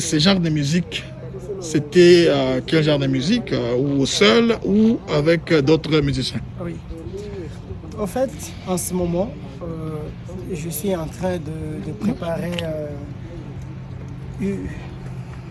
genre de musique, c'était quel genre de musique? Ou seul ou avec d'autres musiciens? Oui. En fait, en ce moment, je suis en train de préparer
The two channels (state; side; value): identical; both; correlation 1.00